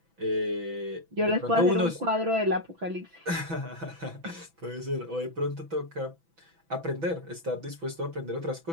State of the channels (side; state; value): left; late; 6.0 ms